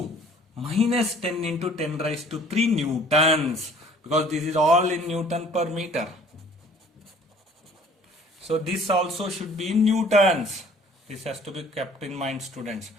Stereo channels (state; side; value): normal; both; correlation 0.53